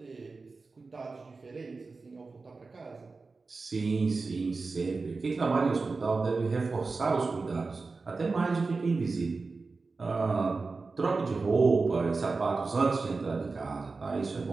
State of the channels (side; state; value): left; quieter; 4.0 dB